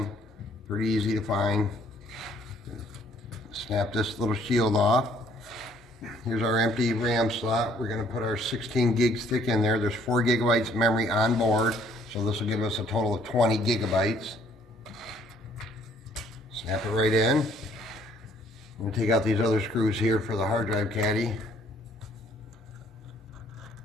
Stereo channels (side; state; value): both; normal; correlation 0.62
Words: pretty easy to find. Snap this little shield off. Here's our empty RAM slot. We're going to put our 16 gig stick in there. There's 4 gigabytes of memory on board, so this will give us a total of 20 gigabytes. Snap it right in. I'm going to take out these other screws here for the hard drive caddy.